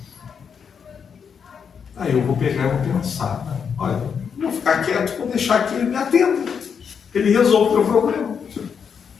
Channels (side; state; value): right; quieter; 6.8 dB